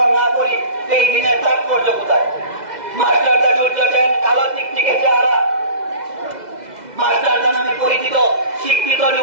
না করি, এই দিনের তাৎপর্য কোথায়? মাস্টারদা সূর্য সেন, কালো চিকচিকে চেহারা, মাস্টারদা নামে পরিচিত শিক্ষিত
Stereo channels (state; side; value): late; left; 2.0 ms